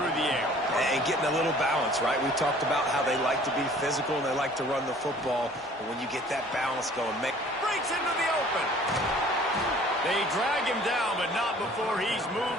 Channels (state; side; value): normal; both; correlation 0.52